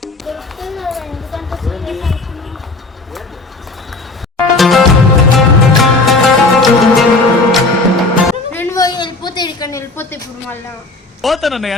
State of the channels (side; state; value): right; quieter; 3.3 dB